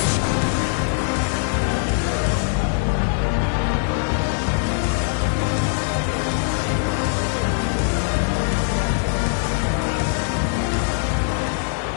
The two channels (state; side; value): silent; right; 58 dB below the other